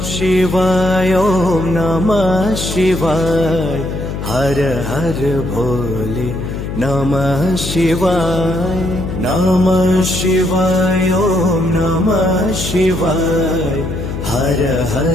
शिवाय ॐ नमः शिवाय हर हर भोले नमः शिवाय नमः शिवाय ॐ नमः शिवाय हर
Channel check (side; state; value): left; noise; hum, 6 dB below the sound